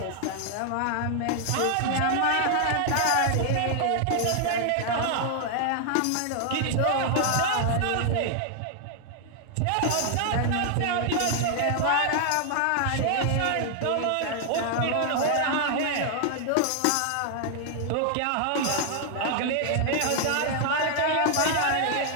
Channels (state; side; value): different; both; correlation 0.00